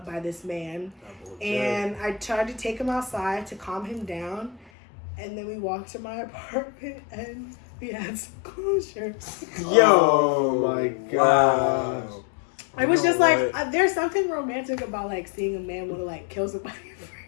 by this man. And I tried to take him outside to calm him down. And then we walked to my apartment, and we had some closure. Yo, my gosh. Wow. It was just like, there's something romantic about, like, seeing a man want to, like, kill somebody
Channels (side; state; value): right; drops out; at 4.6 s